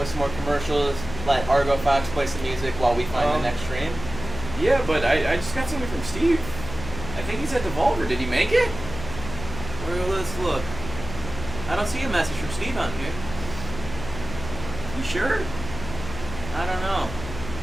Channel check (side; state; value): left; noise; hum, 10 dB below the sound